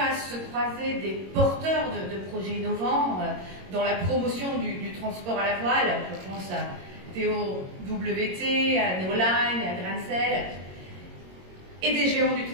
se croiser des porteurs de projets innovants dans la promotion du transport à la voile. Je pense à TOWT, à Neoline, à Grancel, et des géants du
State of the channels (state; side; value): late; left; 22 ms